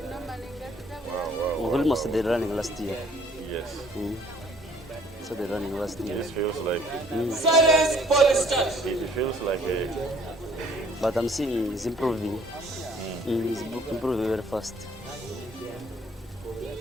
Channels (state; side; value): normal; both; correlation 0.59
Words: Wow. Okolimo started running last year. Yes. Started running last year. This feels like Silence for the start. it feels like a But I'm seeing he's improving. He's improving very fast.